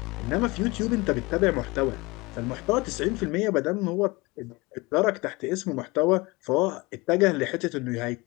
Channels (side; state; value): right; quieter; 23.9 dB